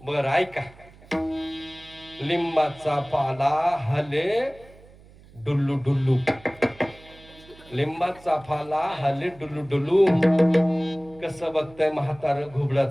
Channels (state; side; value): noise; right; hum, 24 dB below the sound